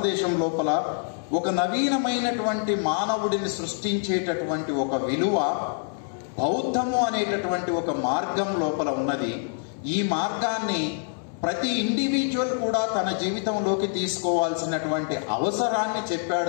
లోపల ఒక నవీనమైనటువంటి మానవుడిని సృష్టించేటటువంటి ఒక విలువ బౌద్ధము అనేటటువంటి ఒక మార్గం లోపల ఉన్నది. ఈ మార్గాన్ని ప్రతి ఇండివిజువల్ కూడా తన జీవితంలోకి తీసుకోవాల్సినటువంటి అవసరాన్ని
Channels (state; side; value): silent; right; 61 dB below the other